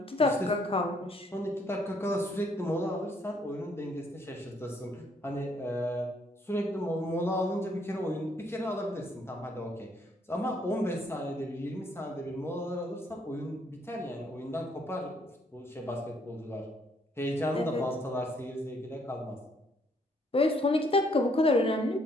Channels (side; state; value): both; normal; correlation 0.68